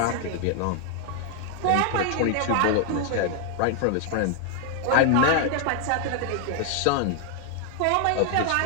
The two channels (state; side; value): different; both; correlation 0.00